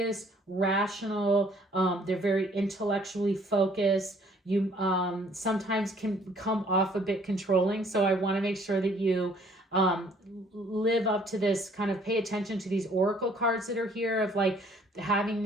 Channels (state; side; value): normal; both; correlation 0.60